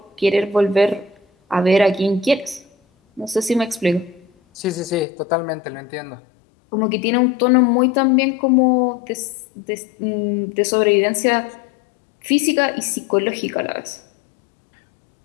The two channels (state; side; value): drops out; right; at 5.1 s